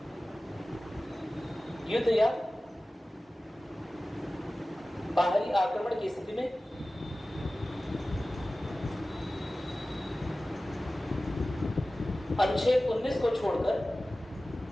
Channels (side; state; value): both; normal; correlation 0.96